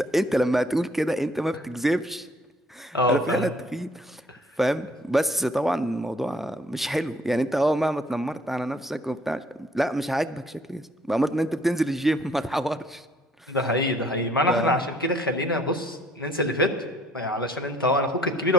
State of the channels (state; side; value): normal; both; correlation 0.61